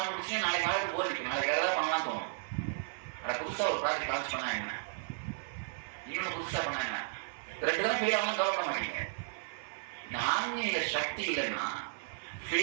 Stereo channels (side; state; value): left; silent; 55 dB below the other